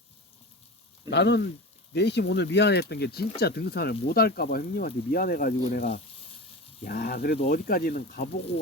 나는 내심 오늘 미안했던 게 진짜 등산을 못 할까봐 형님한테 미안해가지고 내가 야 그래도 어디까지는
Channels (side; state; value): both; normal; correlation 0.28